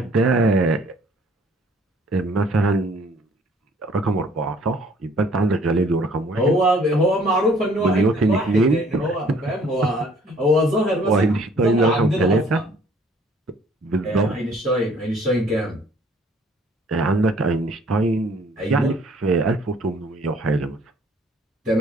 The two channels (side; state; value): both; normal; correlation 0.58